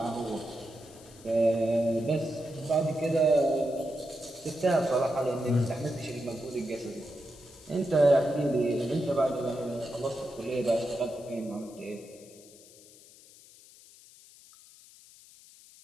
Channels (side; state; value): left; noise; hiss, 22 dB below the sound